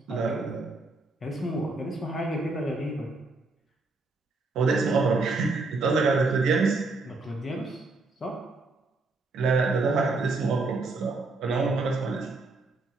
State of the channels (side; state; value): left; quieter; 3.5 dB